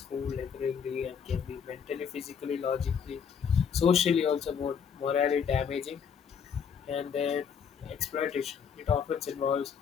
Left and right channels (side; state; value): right; quieter; 7.1 dB